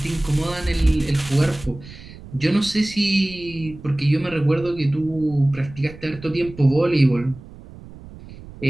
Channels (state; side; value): noise; right; rumble, 17 dB below the sound